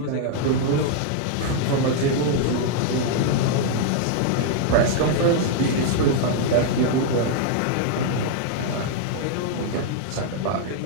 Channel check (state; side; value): different; both; correlation 0.00